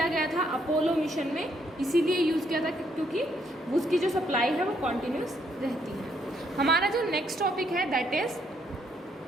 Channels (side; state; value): both; normal; correlation 0.72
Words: गया था अपोलो मिशन में, इसीलिए यूज़ किया था क्योंकि उसकी जो सप्लाई है वो कॉन्टिन्यूस रहती है. हमारा जो नेक्स्ट टॉपिक है दैट इज